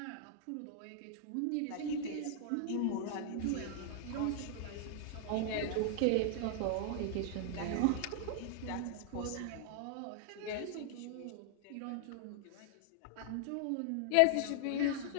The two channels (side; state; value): both; different; correlation 0.00